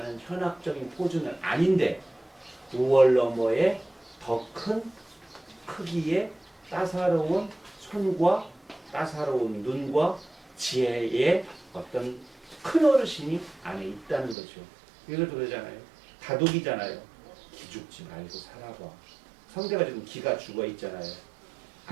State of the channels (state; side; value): drops out; left; at 14.4 s